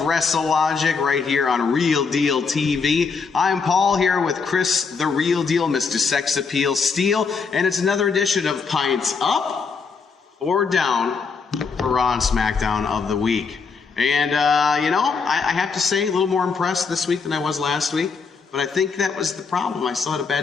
WrestleLogic right here on Real Deal TV. I'm Paul here with Chris, the Real Deal, Mr. Sex Appeal Steele, and it's another edition of Pints Up or Down for Raw and SmackDown of the week. And, I have to say, a little more impressed this week than I was last week. But I think that was the problem. I still had a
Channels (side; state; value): right; quieter; 5.2 dB